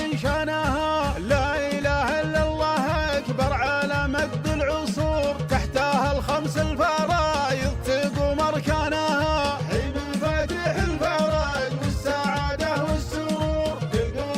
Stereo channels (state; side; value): identical; both; correlation 1.00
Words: شانها، لا إله إلا الله أكبر على مد العصور، تحتها الخمس الفرائض تقوم أركانها، حين مفاتيح الفرج والسعادة والسرور،